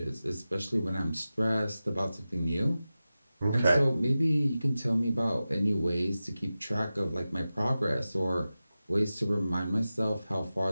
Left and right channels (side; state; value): both; inverted; correlation -0.95